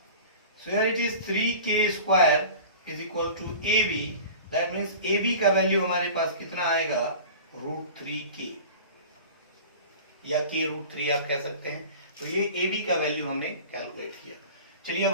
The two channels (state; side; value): inverted; both; correlation -0.38